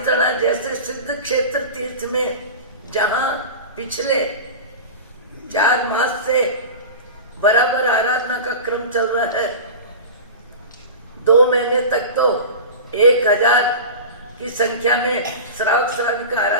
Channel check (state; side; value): inverted; both; correlation -0.31